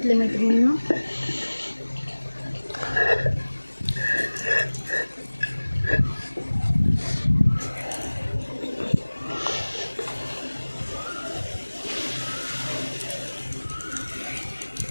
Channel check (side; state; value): both; inverted; correlation -1.00